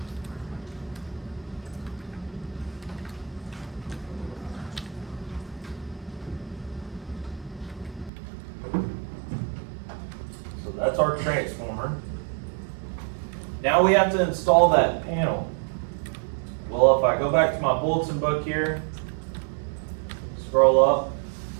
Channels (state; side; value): drops out; left; at 8.1 s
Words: So that's our transformer. Now we have to install that panel. Well, if I go back to my bulletin book here, scroll up